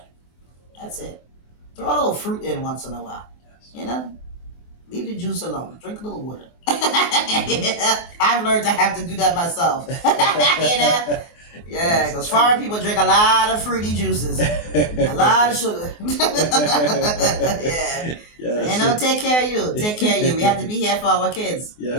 That's it. Throw a little fruit in once in a while. Yes. You know? Leave the juice alone. Drink a little water. I've learned to have to do that myself. You know? Yeah, because foreign people drink a lot of fruity juices, a lot of sugar. Yeah. Yes. You know, take care of you. Take care of you. We have to be here for our kids. Yes. We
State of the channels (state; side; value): late; right; 24 ms